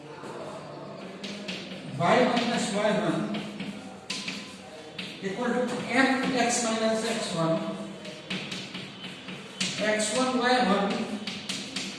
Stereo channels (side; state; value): both; identical; correlation 1.00